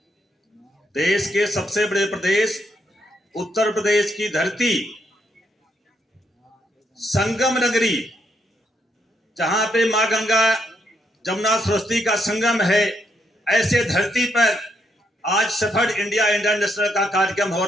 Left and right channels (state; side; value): normal; both; correlation 0.76